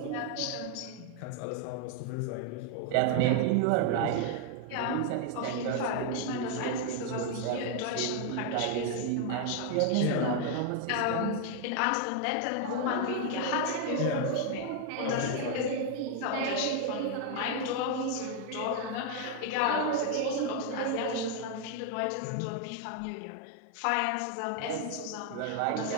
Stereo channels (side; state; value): both; different; correlation 0.00